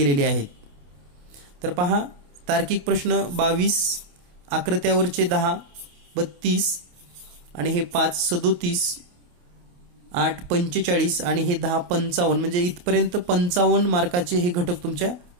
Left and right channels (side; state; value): left; late; 28 ms